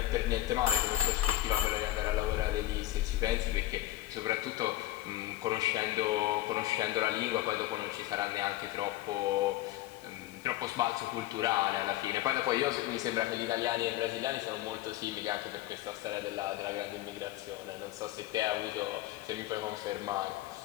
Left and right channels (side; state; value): right; quieter; 15.2 dB